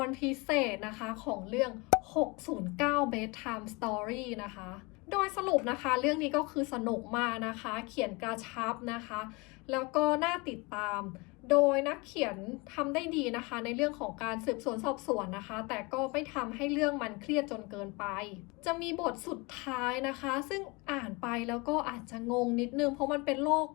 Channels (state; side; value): quieter; right; 26.9 dB